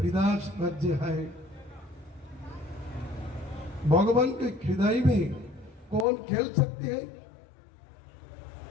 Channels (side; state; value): right; drops out; at 6.1 s